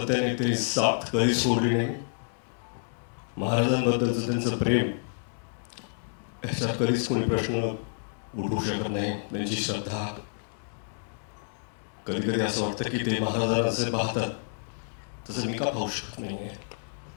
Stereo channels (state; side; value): silent; right; digital silence